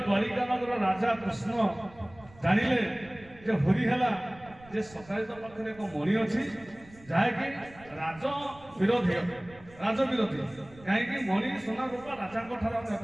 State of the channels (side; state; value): right; noise; rumble, 23 dB below the sound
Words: ଦ୍ୱାରିକା ନଗର ରାଜା କୃଷ୍ଣ ଜାଣିଲେ ଯେ ହୋରି ହେଲା ଯେ ସକ୍ରାଜିତ ପାଖରେ ଏକ ମଣି ଅଛି ଯାହାକି ରାଜ ବିରୋଧୀ କାହିଁକି ମଣି ସୁନା ରୂପା ରାଜାଙ୍କ ଠାରୁ